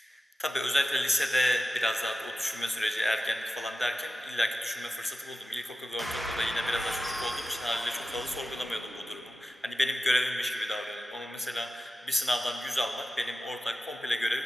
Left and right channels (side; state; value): both; normal; correlation 0.93